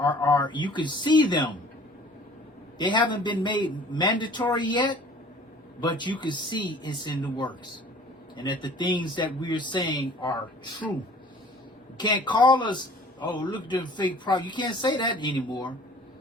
you can see them. They haven't been made mandatory yet, but you can see it's in the works. And that the things that we're saying are true. You can't call us, oh, look at the fake prophet. You can't say that anymore.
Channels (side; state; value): both; normal; correlation 0.49